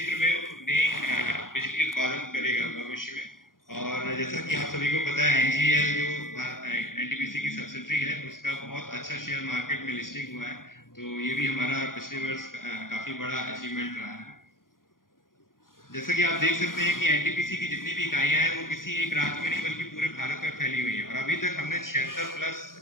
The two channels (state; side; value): late; right; 0.90 ms